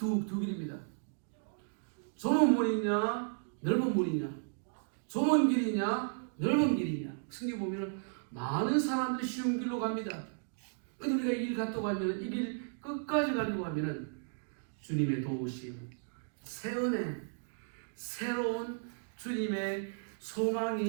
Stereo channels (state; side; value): silent; left; digital silence